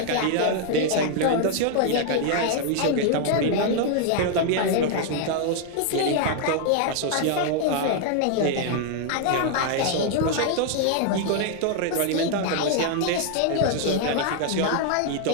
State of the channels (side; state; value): both; different; correlation 0.00